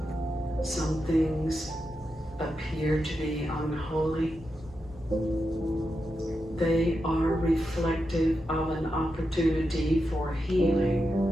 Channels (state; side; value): normal; both; correlation 0.87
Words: some things appear to be unholy, they are reflective of an opportunity for healing,